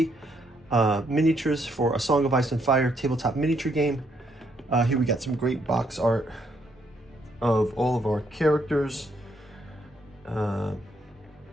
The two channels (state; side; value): normal; both; correlation 0.73